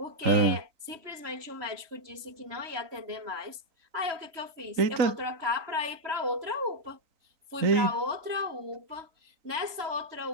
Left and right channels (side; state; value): left; late; 3.0 ms